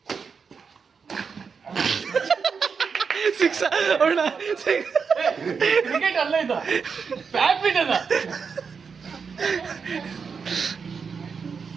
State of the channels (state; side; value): quieter; left; 5.7 dB